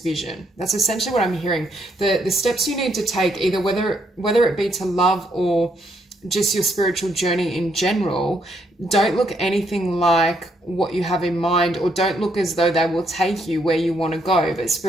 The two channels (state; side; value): normal; both; correlation 0.73